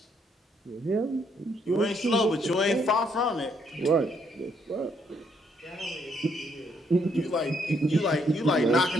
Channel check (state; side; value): normal; both; correlation 0.71